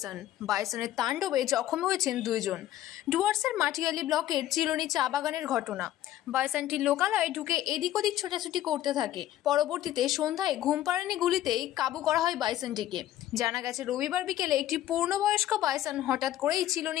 বাইসনের তাণ্ডবে জখম হয়েছেন 2 জন। ডুয়ার্সের মাটিয়ালি ব্লকের চিরনি চা বাগানের ঘটনা। বাইসনটি লোকালয়ে ঢুকে এদিক ওদিক ছোটাছুটি করতে থাকে। পরবর্তীতে সন্ধ্যায় ঘুমপাড়ানি গুলিতেই কাবু করা হয় বাইসনটিকে। জানা গেছে, রবিবার বিকেলে একটি পূর্ণবয়স্ক বাইসন হঠাৎ করেই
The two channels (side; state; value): right; quieter; 13.2 dB